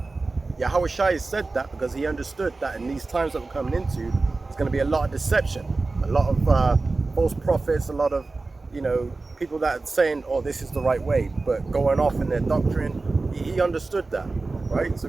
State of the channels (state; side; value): quieter; left; 3.6 dB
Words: Yahushai said that because he understood that in these times that we're coming into, there's going to be a lot of deception, a lot of false prophets, a lot of, you know, people that are saying, oh, this is the right way, but going off in their doctrine. He understood that, right? So